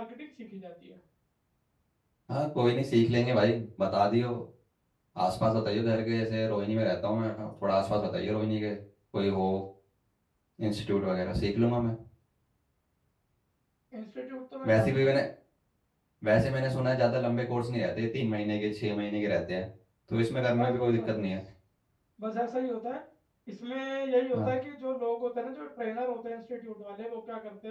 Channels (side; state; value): both; identical; correlation 1.00